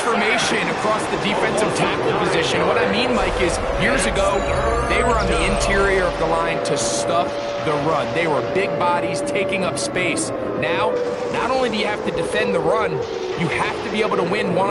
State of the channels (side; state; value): both; identical; correlation 1.00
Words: across the defensive tackle position. What I mean, Mike, is years ago, they were on the interior of the line to stuff the run. They were big bodies taking up space. Now, not only do you have to defend the run, you have to be able to win